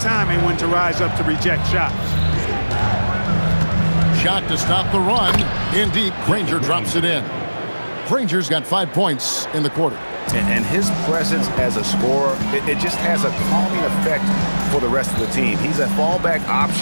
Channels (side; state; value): both; inverted; correlation -1.00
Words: when to rise up to reject shots. Shot to stop the run. In deep, Granger drops it in. Granger's got 5 points in the quarter. And his presence as a scorer, it just has a calming effect for the rest of the team. He's a fallback